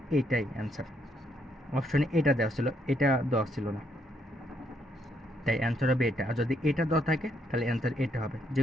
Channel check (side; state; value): both; normal; correlation 0.73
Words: এইটাই অ্যান্সার। অপশনে এটা দেওয়া ছিল, এটা দেওয়া ছিল না, তাই অ্যান্সার হবে এটা। আর যদি এটা দেওয়া থাকে তাহলে অ্যান্সার এটা হবে, যে